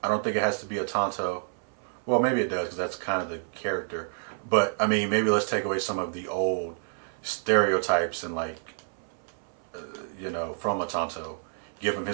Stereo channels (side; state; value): left; silent; 59 dB below the other